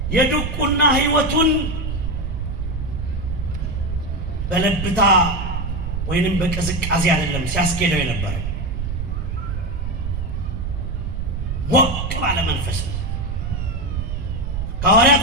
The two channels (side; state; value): right; noise; rumble, 3 dB below the sound